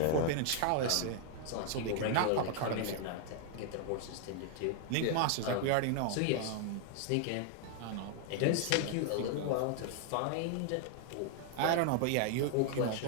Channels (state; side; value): different; both; correlation 0.00